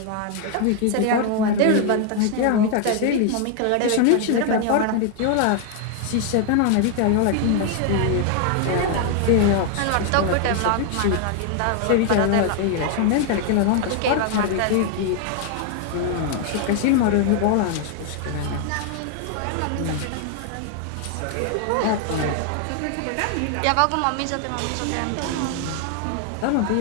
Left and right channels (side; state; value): both; different; correlation 0.00